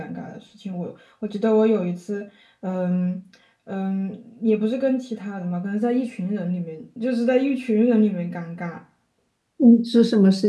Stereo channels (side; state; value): both; identical; correlation 1.00